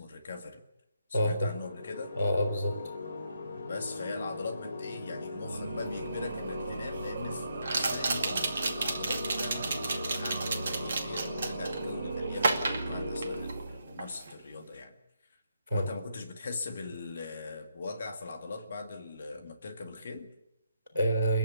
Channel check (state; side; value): inverted; both; correlation -0.78